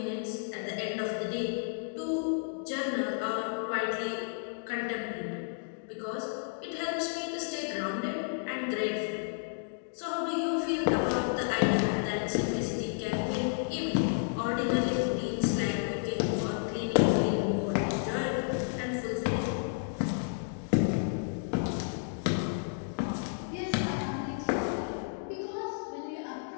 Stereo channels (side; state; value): right; silent; digital silence